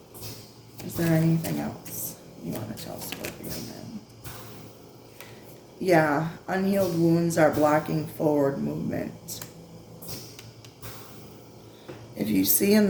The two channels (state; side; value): identical; both; correlation 1.00